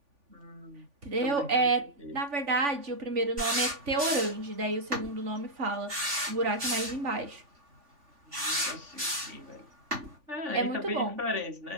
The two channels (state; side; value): late; left; 3.5 ms